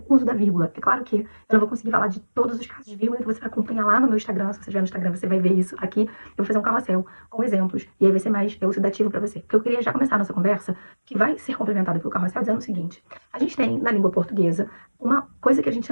o uso da vírgula. É claro que eu não vou conseguir falar de todos os casos de vírgula, então você vai acompanhar lá no meu Instagram. Se você estiver no Instagram, você vai ver isso aqui. Eu vou fazer um carrossel com exemplos, e aí vai ser mais elucidativo pra você. Porque eu queria já começar a nossa conversa, que vai ser complementada pelo carrossel, dizendo o seguinte. A gente tem, na língua portuguesa, uma coisa que a gente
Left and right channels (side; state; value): both; inverted; correlation -1.00